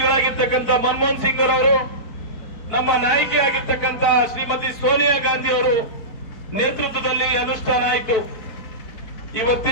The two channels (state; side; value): late; right; 4.3 ms